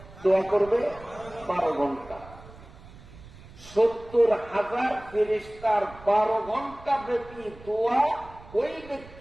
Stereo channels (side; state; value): right; noise; rumble, 19 dB below the sound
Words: দোয়া করবে? 12 ঘন্টা। 70,000 ফেরেশতার 12 ঘন্টা ব্যাপী দোয়া ওই